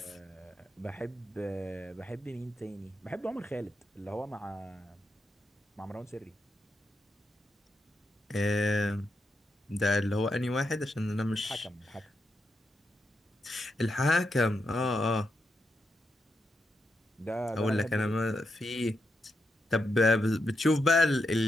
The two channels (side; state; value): both; normal; correlation 0.84